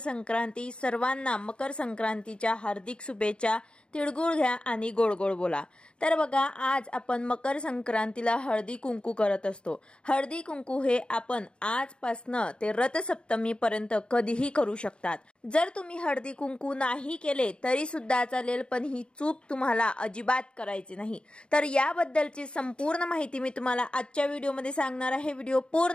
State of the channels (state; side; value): late; right; 0.053 ms